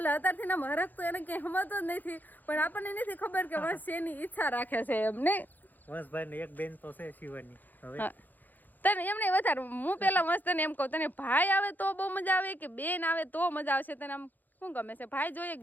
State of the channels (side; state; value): right; late; 0.085 ms